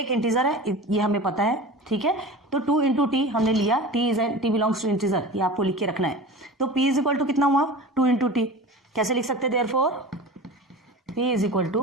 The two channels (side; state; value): both; normal; correlation 0.34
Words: इंटीजर है, ये हमें पता है, ठीक है। तो 2 इंटू टी हमने लिया, टी बिलोंग्स टू इंटीजर, ये आपको लिख के रखना है। तो p इज इक्वल टू कितना हुआ, 2 इंटू टी, कैसे लिख सकते हैं, therefore p is equal to